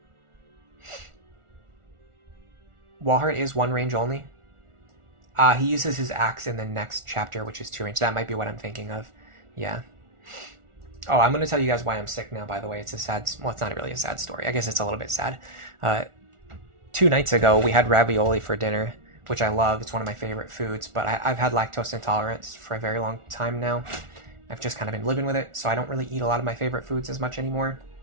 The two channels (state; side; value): late; left; 1.4 ms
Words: Walhart is 1 range only. He uses his axe in the next chapter, which is 2 range. That might be what I'm thinking of. Yeah. Oh, I'm going to tell you guys why I'm sick now, by the way. It's a sad... Well, it's not really a sad story. I guess it's a little bit sad. 2 nights ago, we had ravioli for dinner, which I love. It's one of my favorite foods, but I've had lactose intolerance for a very long time now. I've just kind of been living with it, so I don't really eat a lot of my favorite foods as much anymore.